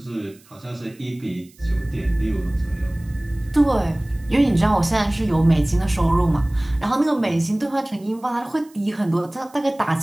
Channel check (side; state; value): right; noise; hiss, 28 dB below the sound